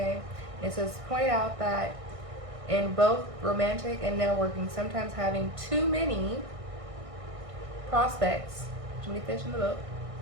it says point out that in both romantic and networking, sometimes having too many prospects, too many fish in the boat,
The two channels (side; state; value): left; late; 1.6 ms